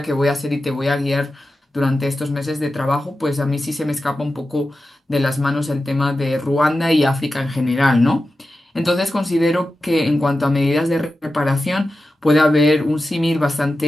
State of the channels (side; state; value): both; normal; correlation 0.92